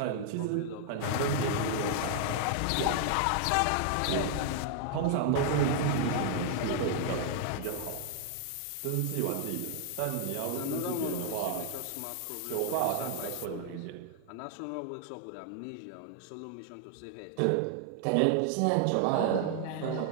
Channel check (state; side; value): different; both; correlation 0.00